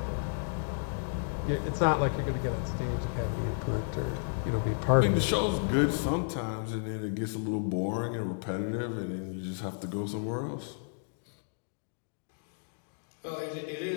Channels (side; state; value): right; silent; digital silence